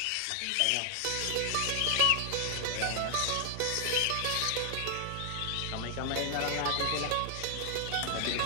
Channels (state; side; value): different; both; correlation 0.00